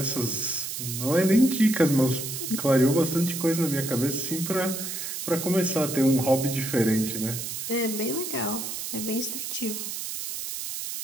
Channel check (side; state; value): right; noise; hiss, 5 dB below the sound